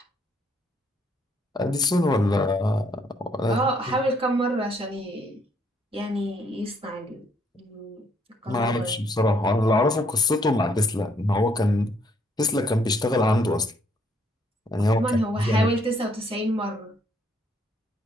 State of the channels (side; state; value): both; normal; correlation 0.69